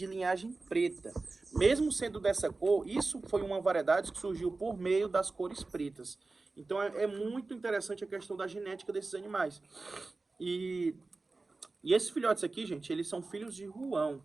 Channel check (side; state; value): left; quieter; 3.6 dB